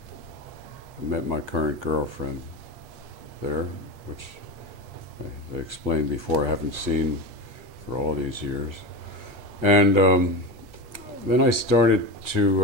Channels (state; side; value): late; left; 8.3 ms